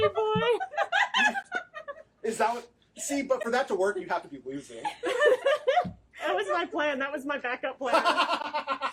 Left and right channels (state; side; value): identical; both; correlation 1.00